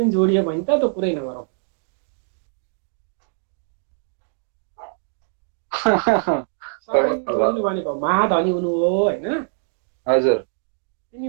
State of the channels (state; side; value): silent; left; digital silence